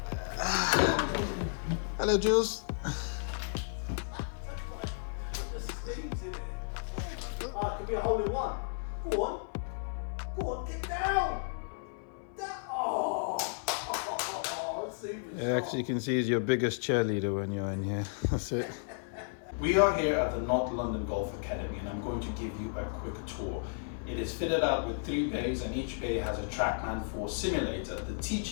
Hello, Jules. Oh, it could be a hole in one. Go on, get down. Actually, you can see he's your biggest cheerleader when you're in here. That's it. We are here at the North London Golf Academy and I'm going to give you a quick tour. It is fitted out with 3 bays and each bay has a Trackman 4 simulator. The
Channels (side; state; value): right; silent; 56 dB below the other